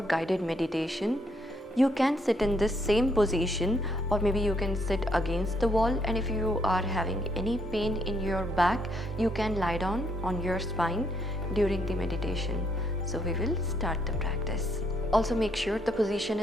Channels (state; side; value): normal; both; correlation 0.72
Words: guided meditation. You can sit in this same position, or maybe you can sit against the wall, and if you are having any pain in your back, you can lie down on your spine during the meditation. So we will start the practice. Also make sure the position